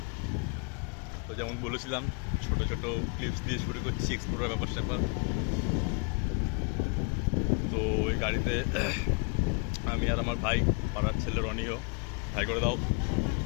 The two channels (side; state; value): right; quieter; 33.4 dB